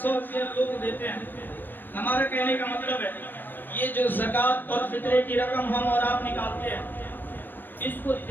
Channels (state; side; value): late; right; 0.093 ms